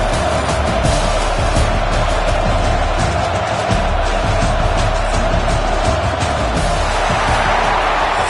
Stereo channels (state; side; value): identical; both; correlation 1.00